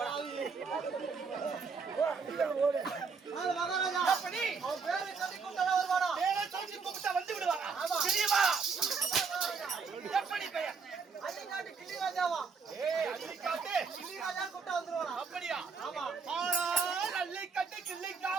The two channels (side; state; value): left; quieter; 5.2 dB